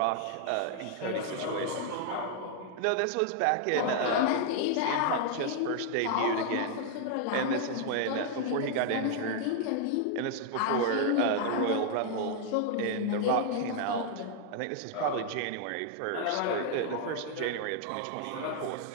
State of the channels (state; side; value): different; both; correlation 0.00